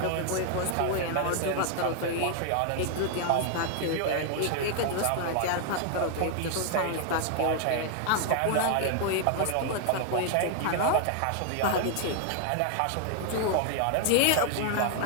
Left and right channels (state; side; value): different; both; correlation 0.00